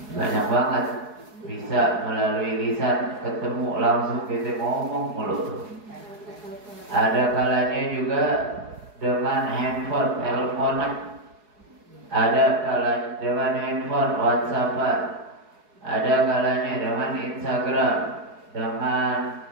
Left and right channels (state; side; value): late; left; 4.7 ms